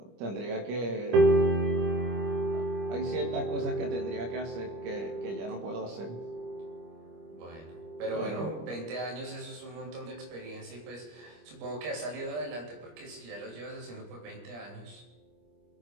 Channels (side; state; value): left; late; 25 ms